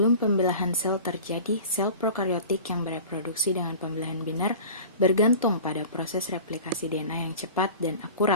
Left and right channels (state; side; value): inverted; both; correlation -0.39